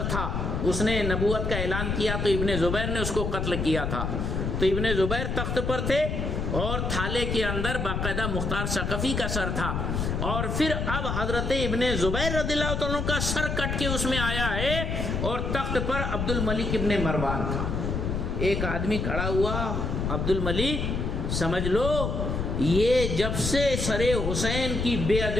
تھا. اس نے نبوت کا اعلان کیا تو ابن زبیر نے اس کو قتل کیا تھا. تو ابن زبیر تخت پر تھے اور تھالے کے اندر باقاعدہ مختار ثقفی کا سر تھا. اور پھر اب حضرت ابن زبیر رضی اللہ تعالیٰ کا سر کٹ کے اس میں آیا ہے اور تخت پر عبد الملک ابن مروان تھا. ایک آدمی کھڑا ہوا، عبد الملک سمجھ لو یہ جب سے سر حسین کی بے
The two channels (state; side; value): noise; left; rumble, 1 dB below the sound